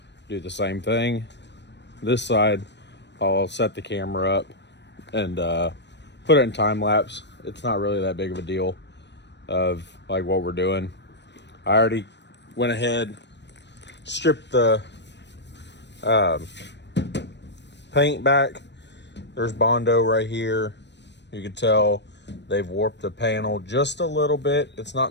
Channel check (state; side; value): late; right; 0.51 ms